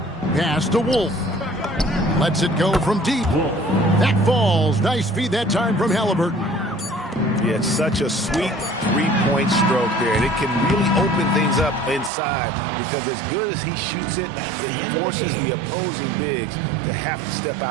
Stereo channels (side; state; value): left; drops out; at 12.1 s